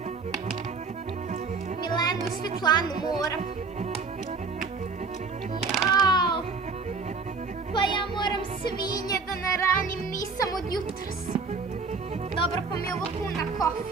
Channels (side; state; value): left; quieter; 4.6 dB